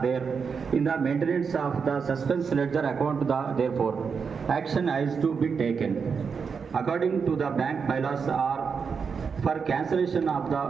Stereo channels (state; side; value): quieter; left; 5.9 dB